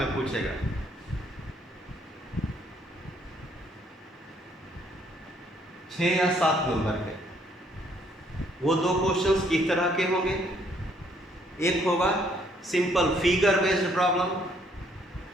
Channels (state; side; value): normal; both; correlation 0.67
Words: पूछेगा। छः या 7 number के। वो 2 क्वेश्चंस किस तरह के होंगे? एक होगा simple figure based problem,